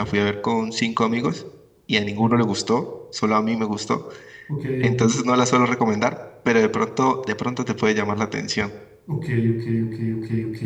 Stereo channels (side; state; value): both; identical; correlation 1.00